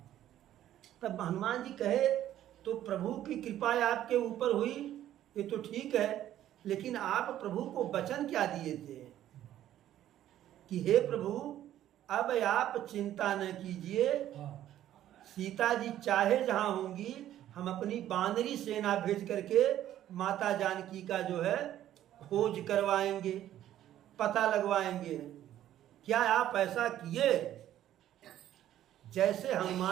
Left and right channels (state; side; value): quieter; left; 12.2 dB